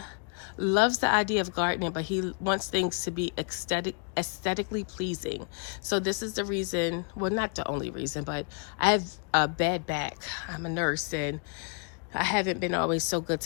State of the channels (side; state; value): right; quieter; 37.3 dB